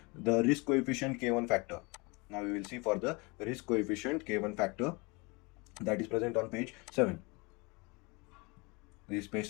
The risk coefficient K1 factor. Now we will see for the risk coefficient K1 factor, that is present on page 7. This is page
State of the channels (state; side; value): quieter; right; 27.8 dB